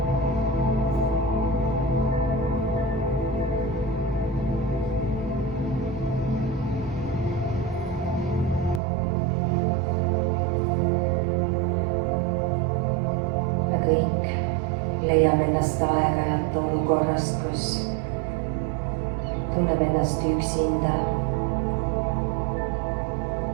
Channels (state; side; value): drops out; left; at 8.8 s